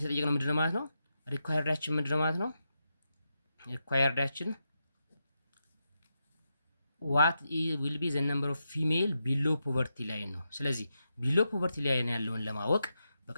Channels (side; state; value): both; inverted; correlation -0.86